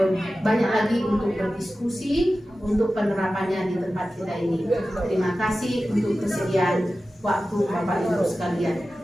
banyak lagi untuk berdiskusi untuk penerapannya di tempat kita ini. Terima kasih untuk kesediaan waktu Bapak Ibu sekalian.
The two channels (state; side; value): normal; both; correlation 0.94